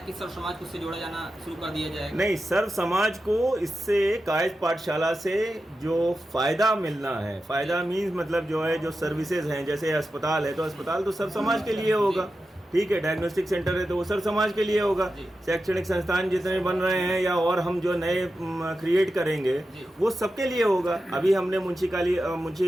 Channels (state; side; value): normal; both; correlation 0.91